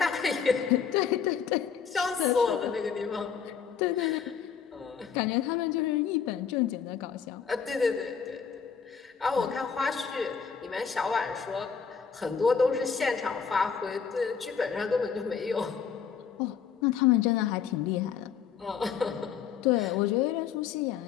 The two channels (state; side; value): quieter; right; 7.0 dB